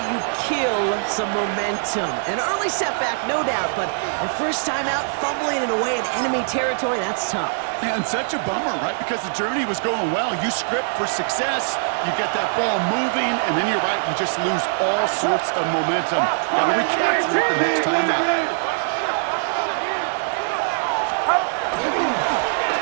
kill some momentum. An early setback, no doubt, but the first time out, fumbling it away in enemy territory, that's tough. And such a bummer, right? Because the journey was going well. You script for success, you get that ball moving, and then you're right, you just lose all sorts of momentum. Got to recapture it the next time out.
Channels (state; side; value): silent; left; digital silence